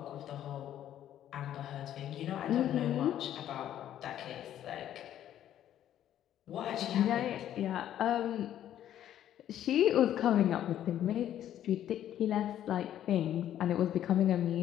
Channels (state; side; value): quieter; right; 11.3 dB